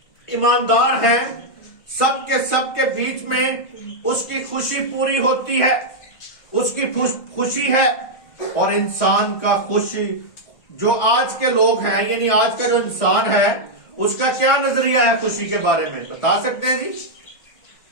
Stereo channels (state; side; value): late; right; 1.6 ms